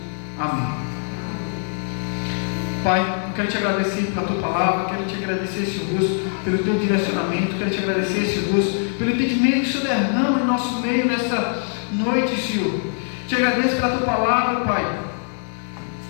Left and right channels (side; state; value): right; silent; digital silence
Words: Amém. Pai, eu quero te agradecer pela tua palavra, quero te agradecer, Senhor Deus, pelo teu direcionamento, quero te agradecer, Senhor Deus, pelo entendimento que o Senhor derrama no nosso meio nessa noite, Senhor. Te agradeço pela tua palavra, Pai.